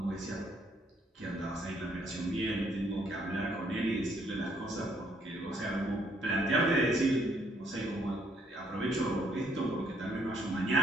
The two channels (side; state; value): both; normal; correlation 0.68